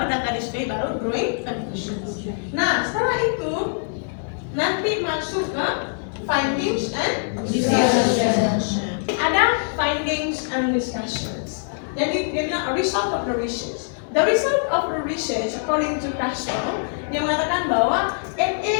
data display, baru drawing conclusions. Nah, setelah itu nanti masuk ke findings and discussions. Ada findings and discussions. Jadi dia bilang a result of the research. The result of the research, according to Castro, dia mengatakan bahwa it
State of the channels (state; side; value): silent; right; digital silence